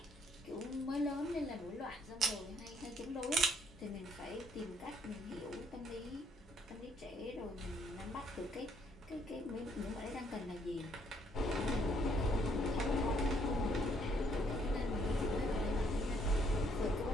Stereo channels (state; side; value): normal; both; correlation 0.68